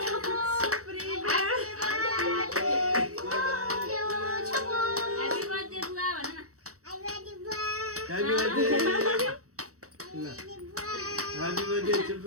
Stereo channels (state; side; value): late; left; 0.65 ms